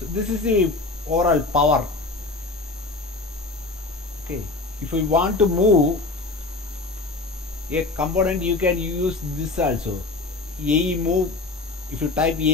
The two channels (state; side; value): quieter; right; 3.4 dB